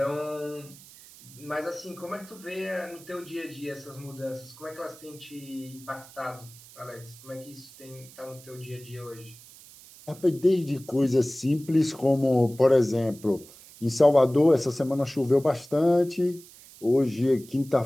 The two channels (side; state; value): right; noise; hiss, 21 dB below the sound